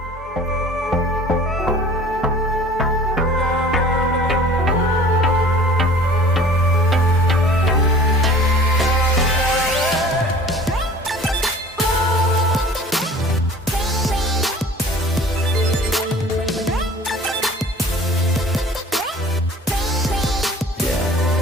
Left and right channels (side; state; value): both; normal; correlation 0.47